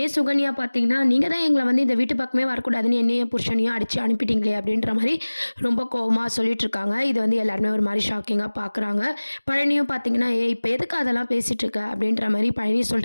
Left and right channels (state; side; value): inverted; both; correlation -1.00